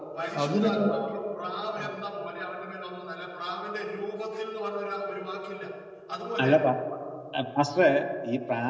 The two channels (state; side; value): identical; both; correlation 1.00